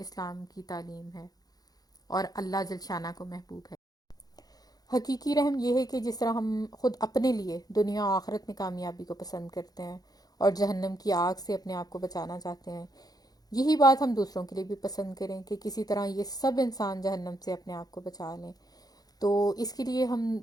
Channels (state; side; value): late; right; 0.19 ms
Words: کی تعلیم ہے اور اللہ جل شانہ کو محبوب ہے. حقیقی رحم یہ ہے کہ جس طرح ہم خود اپنے لیے دنیا و آخرت میں کامیابی کو پسند کرتے ہیں اور جہنم کی آگ سے اپنے آپ کو بچانا چاہتے ہیں, یہی بات ہم دوسروں کے لیے بھی پسند کریں کہ کسی طرح یہ سب انسان جہنم سے اپنے آپ کو بچا لیں. تو اس کے لیے ہم